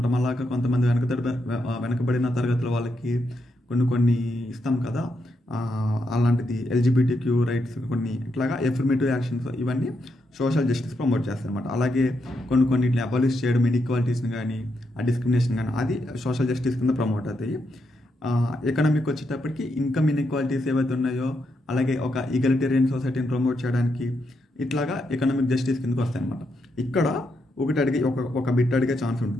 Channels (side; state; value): both; normal; correlation 0.81